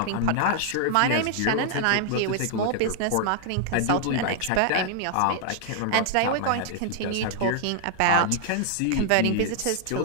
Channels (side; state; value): both; different; correlation 0.00